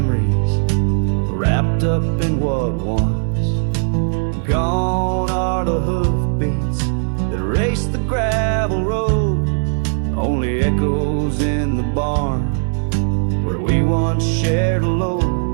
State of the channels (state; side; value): silent; left; digital silence